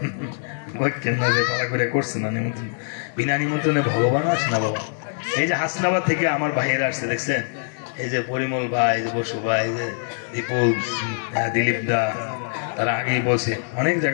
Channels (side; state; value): right; silent; digital silence